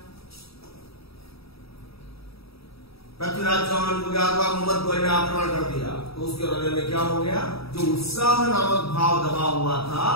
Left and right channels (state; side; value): late; right; 0.77 ms